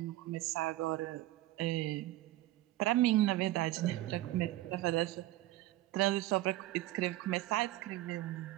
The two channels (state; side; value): quieter; left; 16.4 dB